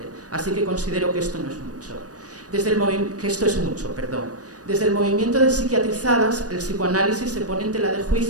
Así que considero que esto no es mucho. Desde el movimiento de psiquiatrizadas, el psicoanálisis se pone en tela de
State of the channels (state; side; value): late; left; 0.68 ms